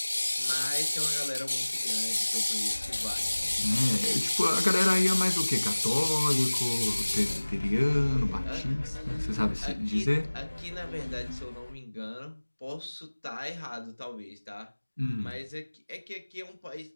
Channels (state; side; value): inverted; both; correlation -1.00